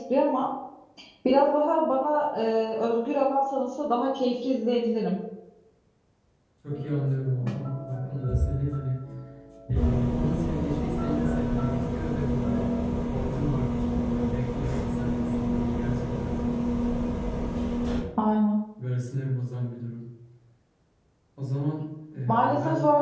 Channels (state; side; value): identical; both; correlation 1.00